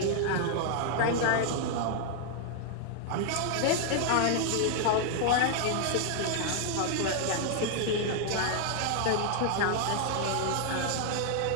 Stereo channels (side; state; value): both; different; correlation 0.00